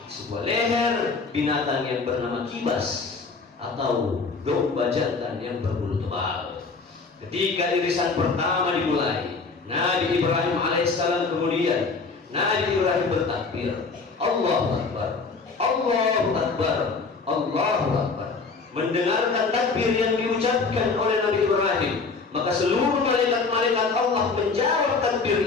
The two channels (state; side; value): quieter; right; 4.4 dB